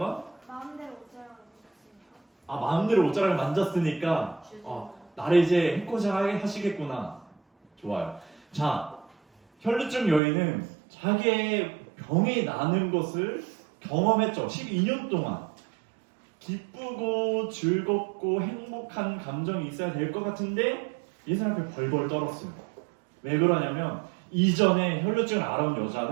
마음대로 옷자락을 입었으니까. 마음대로 옷자락을 만졌으니까 나를 이제 해코지 하시겠구나. 좋아요. 자, 혈루증 여인은 자기의 병이 나는 것을 경험했죠. 12년 동안. 기쁘고 즐겁고 행복한 감정이 있어야 될 것 같은데 이 사람 앞에 벌벌 떨었어요. 왜 그러냐면 이전에 혈루증을 앓아온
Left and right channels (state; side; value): drops out; left; at 10.2 s